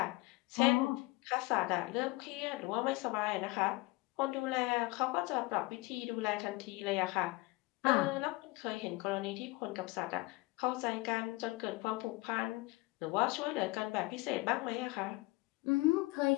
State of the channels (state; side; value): quieter; right; 22.3 dB